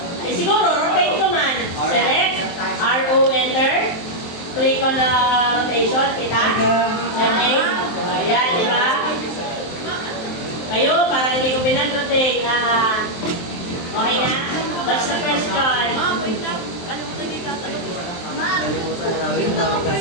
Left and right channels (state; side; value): late; right; 23 ms